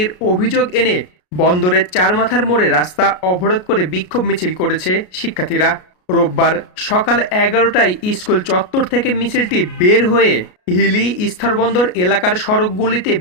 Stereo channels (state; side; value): late; right; 33 ms